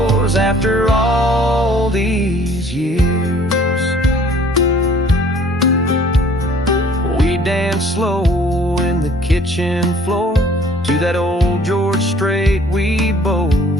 after all these years. We dance slow in the kitchen floor to that old George Strait we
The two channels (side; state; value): both; normal; correlation 0.55